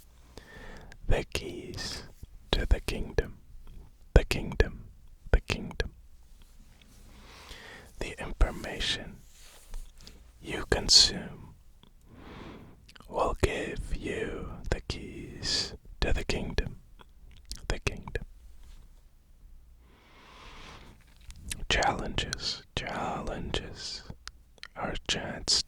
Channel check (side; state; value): both; identical; correlation 1.00